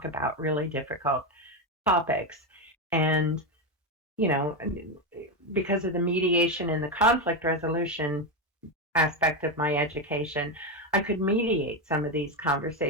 about really difficult topics. And you know because of the mediation and the conflict resolution aspect of my education, I could mediate some of these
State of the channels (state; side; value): normal; both; correlation 0.10